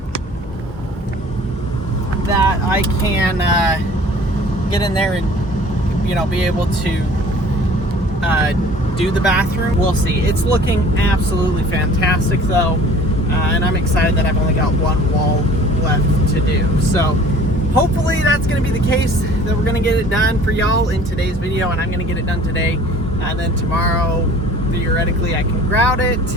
that I can get in there and, you know, be able to do the bathroom. We'll see. It's looking absolutely fantastic though, and I'm excited that I've only got one wall left to do. So hopefully that's going to be the case, that we're going to get it done for y'all in today's video, and I'm going to get it done today. And then tomorrow, theoretically, I can grout it,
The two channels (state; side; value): normal; both; correlation 0.48